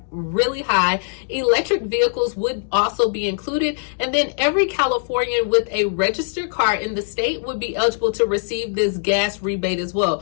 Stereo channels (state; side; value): silent; right; digital silence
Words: really high. Electric vehicles would also be included. And then every Californian with a registered car in the state would be eligible to receive this gas rebate as well.